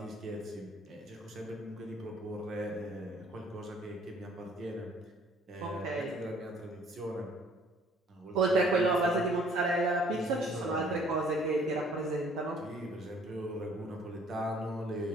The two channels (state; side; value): normal; both; correlation 0.58